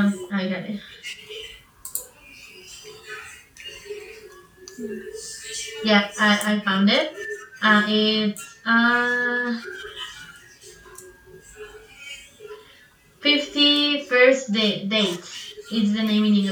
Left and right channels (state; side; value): identical; both; correlation 1.00